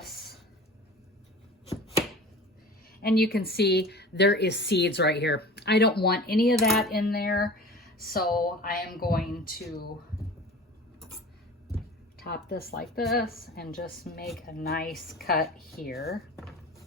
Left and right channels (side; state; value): both; normal; correlation 0.39